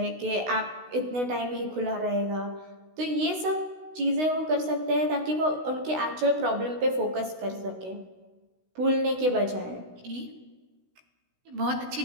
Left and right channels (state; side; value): late; left; 16 ms